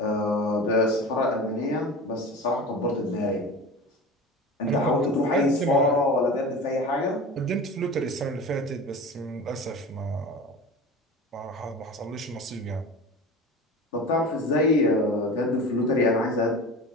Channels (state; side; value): normal; both; correlation 0.33